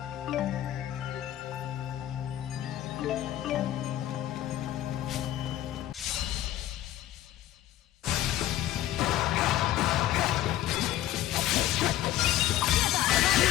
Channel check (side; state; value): right; quieter; 13.4 dB